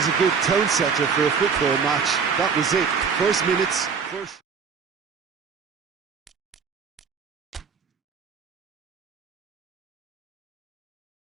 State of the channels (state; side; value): quieter; left; 6.0 dB